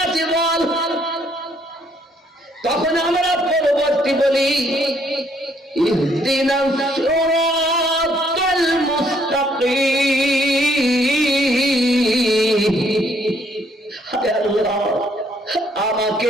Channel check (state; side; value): normal; both; correlation 0.68